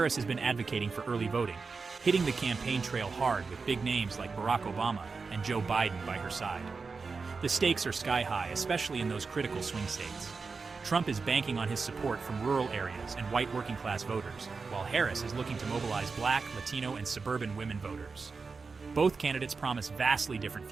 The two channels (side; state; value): left; quieter; 4.6 dB